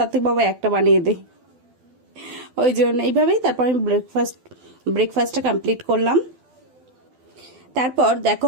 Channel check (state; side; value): late; left; 12 ms